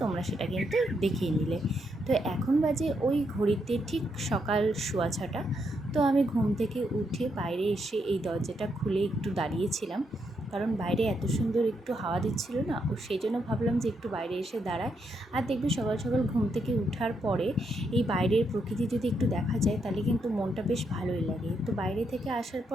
তোমরা সেটা কিন্তু দেখিয়ে নিলে। তো এখন বাজে ওই ঘড়িতে ঠিক সকাল 6:15। তো আমি ঘুম থেকে উঠে বাইরে এসে এই দরজাটা খুলে একটু দাঁড়িয়েছিলাম, কারণ বাইরে এত সুন্দর একটু হাওয়া দিচ্ছিল না, ও সেই জন্য ভাবলাম যে একটু বাইরে এসে দাঁড়ায়। আর দেখবি সকাল সকাল ঘুম থেকে ওঠার পরে এই বাইরের প্রকৃতি যদি একটু দেখা যায় তাহলে কিন্তু মনটা বেশ ভালোই লাগে। তো বাইরে থেকে আসার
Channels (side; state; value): both; normal; correlation 0.79